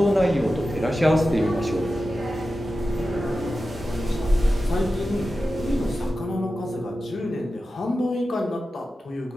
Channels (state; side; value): normal; both; correlation 0.93